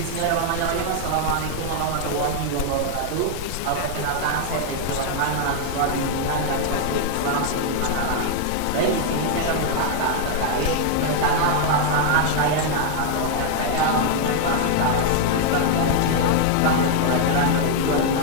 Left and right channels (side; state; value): both; different; correlation 0.00